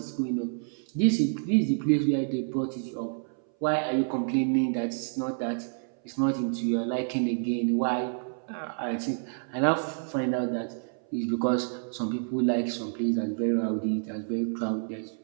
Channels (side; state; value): left; silent; 59 dB below the other